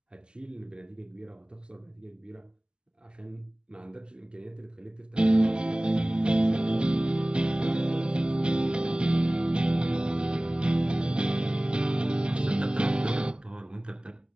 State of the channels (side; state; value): left; late; 0.049 ms